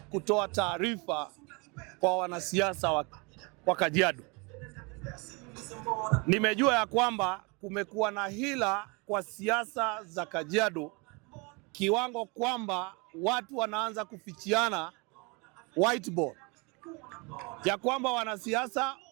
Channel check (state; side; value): quieter; left; 29.7 dB